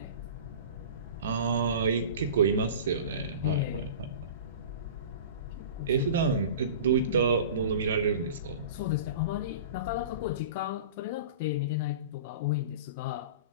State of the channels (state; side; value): inverted; both; correlation -0.36